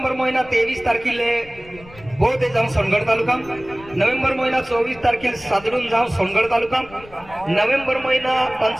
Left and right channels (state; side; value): noise; left; rumble, 21 dB below the sound